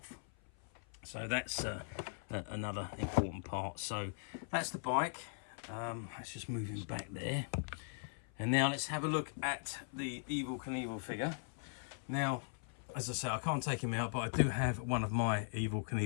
So that's another important part. So that's the bike. Let's just move him back there. And now let's have a look at the Evel Knievel figure. Now, as I say, I can't take him out, but I do have one of my Evel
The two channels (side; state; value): right; silent; 51 dB below the other